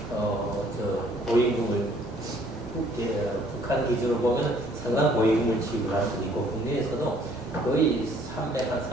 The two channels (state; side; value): normal; both; correlation 0.60